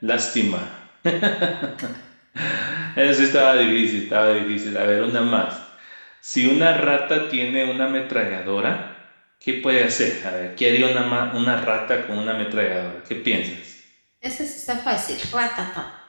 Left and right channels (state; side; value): inverted; both; correlation -1.00